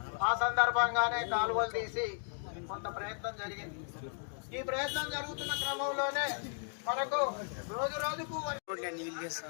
ఆ సందర్భంగానే కాలువలు తీసి కొంత ప్రయత్నం జరిగింది. ఈ ప్రయత్నం జరుగుతున్న క్రమంలోనే మనకు రోజు రోజుకు నీళ్ళు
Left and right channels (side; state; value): right; silent; 54 dB below the other